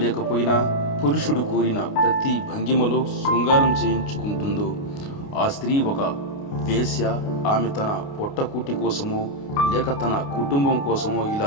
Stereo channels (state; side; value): late; right; 29 ms